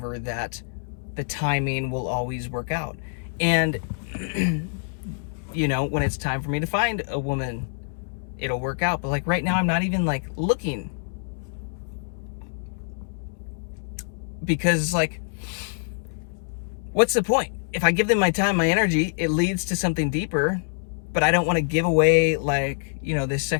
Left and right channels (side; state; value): right; silent; 61 dB below the other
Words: that the timing will always work out. And you know, when it's time for me to find a woman, it'll work out. But like right now, I'm not even like looking, because it's like, what's the point? If I give them my time, my energy, it leads to something deeper, but I don't want to give away, like, you know, this